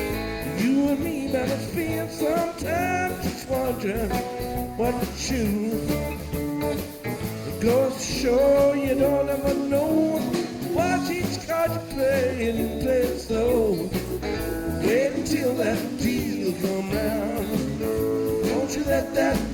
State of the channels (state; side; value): identical; both; correlation 1.00